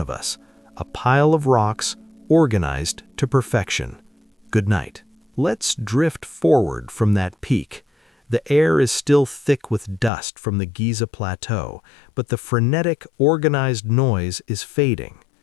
us. A pile of rocks, organized to perfection. Good night. Let's drift forward from that peak. The air is still thick with dust from the Giza plateau, but the frenetic, organized noise is fading.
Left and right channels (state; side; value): drops out; right; at 10.1 s